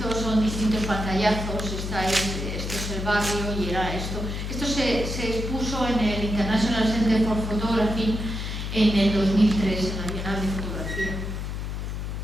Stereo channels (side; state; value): left; noise; hum, 4 dB below the sound